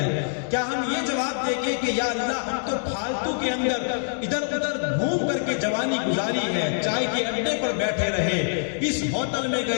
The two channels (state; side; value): silent; right; digital silence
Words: کیا ہم یہ جواب دیں گے کہ یا اللہ ہم تو پھالتو کے اندر ادھر ادھر گھوم کر کے جوانی گزاری ہے، چائے کے اڈے پر بیٹھے رہے، اس ہوٹل میں